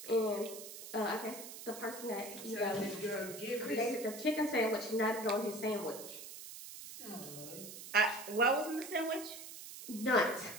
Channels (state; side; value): noise; right; hiss, 12 dB below the sound